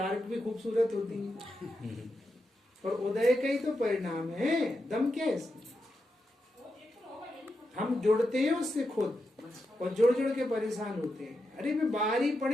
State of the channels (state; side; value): normal; both; correlation 0.86